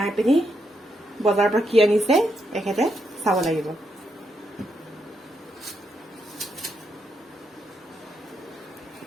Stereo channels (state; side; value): normal; both; correlation 0.80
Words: পিনি বজাৰৰ পৰা কি আনিছে এখেতে চাব লাগিব